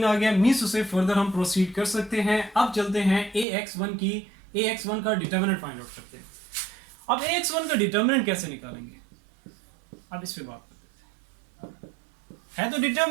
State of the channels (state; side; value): drops out; left; at 3.5 s